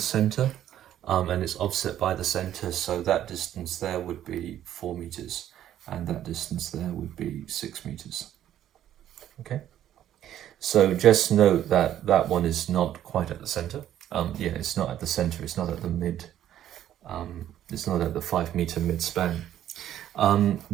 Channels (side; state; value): left; quieter; 11.5 dB